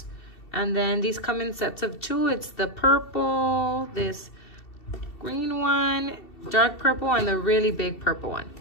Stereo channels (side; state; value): right; late; 2.7 ms